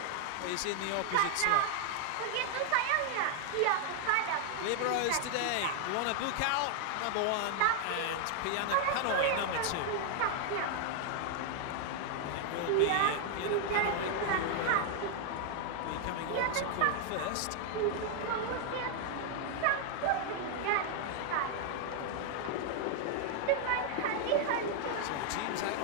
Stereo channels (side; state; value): both; different; correlation 0.00